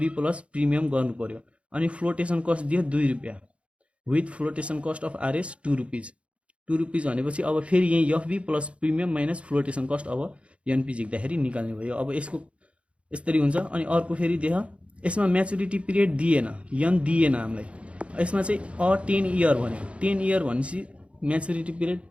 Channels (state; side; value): late; left; 0.061 ms